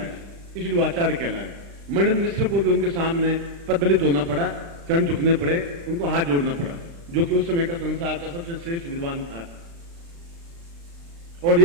इसलिए वो आचार्य कहलाए। मणिन्द्र मिश्र को भी उनके सामने पददलित होना पड़ा, चरण झुकने पड़े, उनको हाथ जोड़ना पड़ा, जो कि उस समय का संसार का सबसे श्रेष्ठ विद्वान था। और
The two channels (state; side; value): late; left; 35 ms